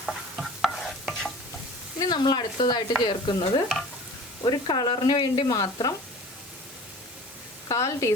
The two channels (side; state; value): both; normal; correlation 0.42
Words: ഇനി നമ്മൾ അടുത്തതായിട്ട് ചേർക്കുന്നത് ഒരു കളറിന് വേണ്ടി മാത്രം 1/4